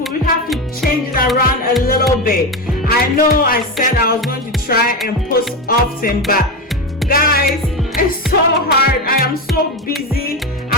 We have to change it around a little bit. I know I said I was going to try and post often, but guys, it's so hard. I am so busy.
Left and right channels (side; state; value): both; normal; correlation 0.16